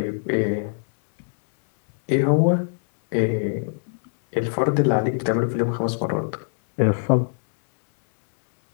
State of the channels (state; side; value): silent; right; 64 dB below the other